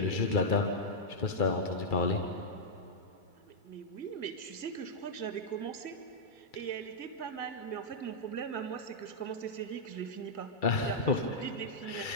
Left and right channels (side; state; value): right; late; 2.3 ms